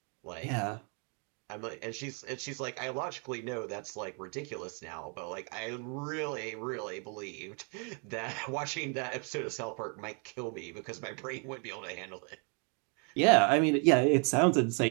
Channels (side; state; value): left; quieter; 37.7 dB